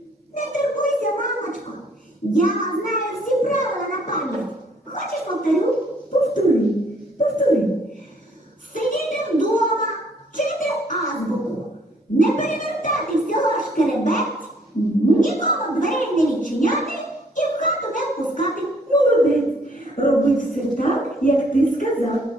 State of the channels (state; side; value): normal; both; correlation 0.63